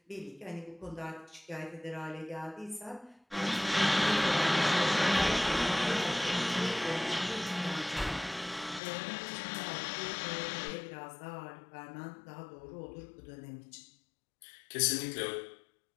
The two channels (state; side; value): drops out; right; at 8.8 s